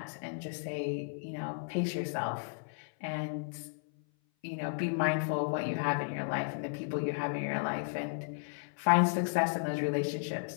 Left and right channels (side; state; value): right; silent; 55 dB below the other